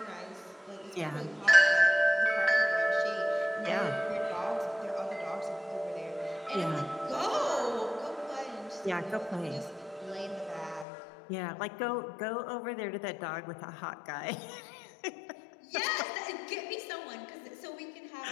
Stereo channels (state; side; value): drops out; right; at 10.9 s